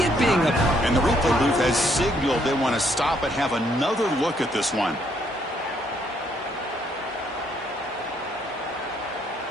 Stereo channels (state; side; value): normal; both; correlation 0.70